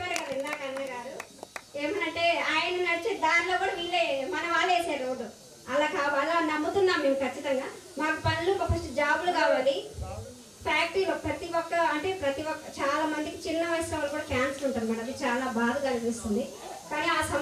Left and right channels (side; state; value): both; identical; correlation 1.00